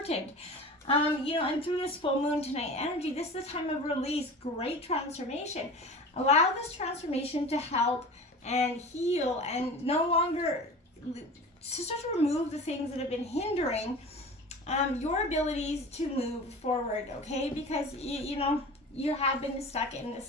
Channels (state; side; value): normal; both; correlation 0.36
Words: And through this full moon tonight energy, this is a time of release, great transformation. Allow this transformation to help and heal and no longer to start to remove the things that have been hindering your abilities to move forward, okay? Because, you have been stuck in this